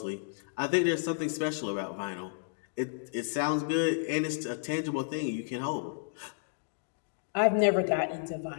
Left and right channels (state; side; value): silent; right; digital silence